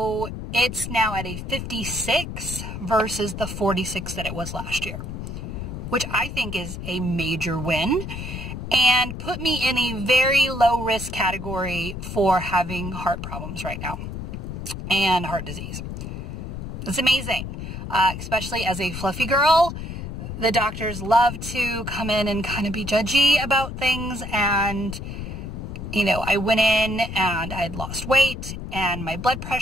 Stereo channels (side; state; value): left; noise; rumble, 7 dB below the sound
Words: it's now at a 56 versus the 46 that it was last year, which I think is a major win and put me in a very low risk category for having heart problems right now and heart disease. It's amazing, especially as a fluffy girl. The doctors love to come in and kind of be judgy about things, and you know, I went in and I'd lost weight and my blood